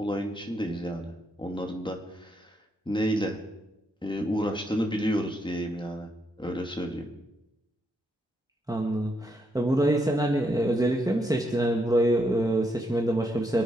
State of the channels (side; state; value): both; normal; correlation 0.78